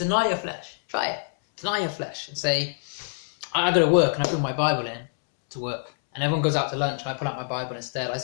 your flesh. Try it. Deny your flesh and say, I go to work and I bring my Bible in to work. And everyone goes out to lunch and I pull out my Bible instead. I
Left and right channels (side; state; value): right; silent; 61 dB below the other